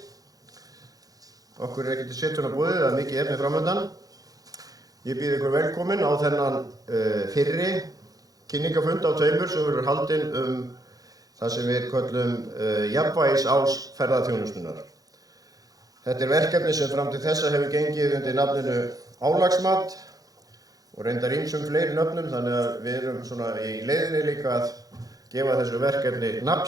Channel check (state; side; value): late; left; 0.18 ms